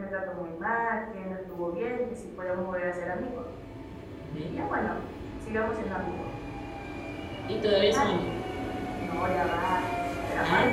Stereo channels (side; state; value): both; identical; correlation 1.00